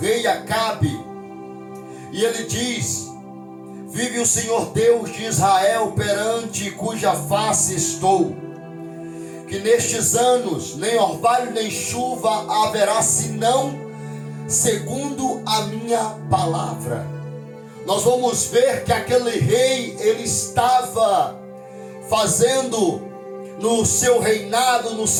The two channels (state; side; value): identical; both; correlation 1.00